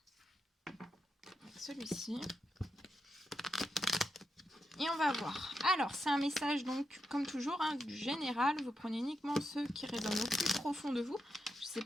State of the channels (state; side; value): normal; both; correlation 0.86